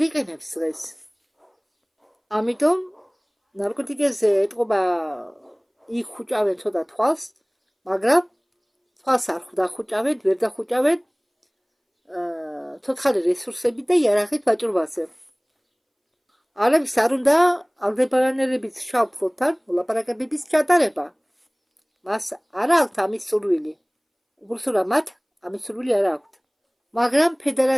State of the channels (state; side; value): identical; both; correlation 1.00